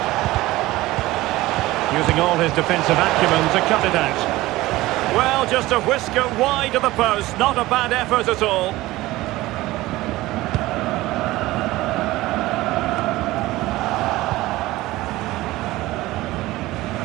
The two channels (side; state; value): left; quieter; 18.1 dB